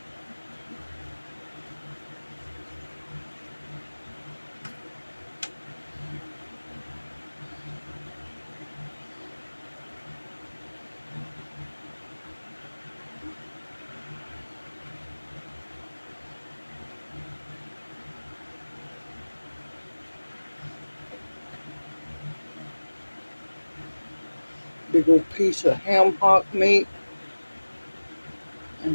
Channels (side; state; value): both; inverted; correlation -1.00